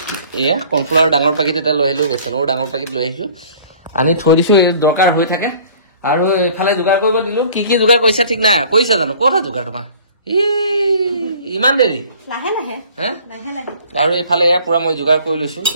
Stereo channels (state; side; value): inverted; both; correlation -0.50